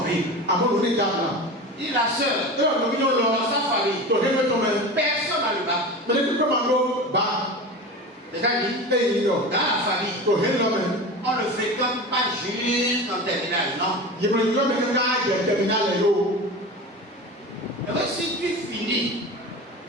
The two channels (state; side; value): normal; both; correlation 0.30